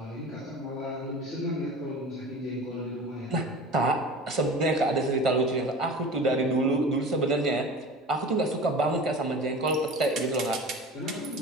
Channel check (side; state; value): both; normal; correlation 0.36